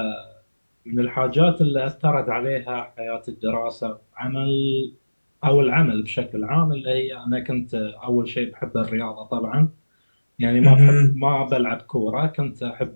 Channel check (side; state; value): both; inverted; correlation -1.00